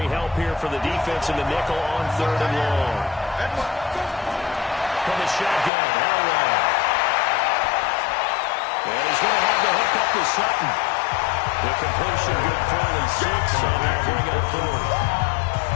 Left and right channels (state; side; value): drops out; right; at 5.7 s